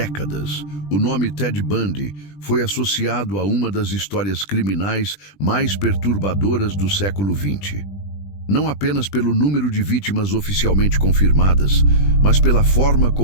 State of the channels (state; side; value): late; right; 20 ms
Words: o nome Ted Bundy foi associado a uma das histórias criminais mais perturbadoras do século XX. Não apenas pelo número de vítimas oficialmente confirmadas, mas pela forma